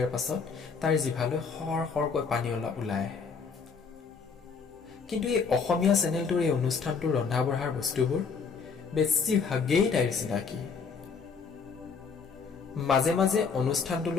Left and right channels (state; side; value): quieter; right; 5.5 dB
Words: পাছত তাইৰ জিভালৈ সৰ সৰকৈ পানী ওলাই আহে। কিন্তু এই অসমীয়া চেনেলটোৰ এই অনুষ্ঠানটোৰ ৰন্ধা বঢ়াৰ বস্তুবোৰ বেছিভাগেই তাইৰ চিনাকি। মাজে মাজে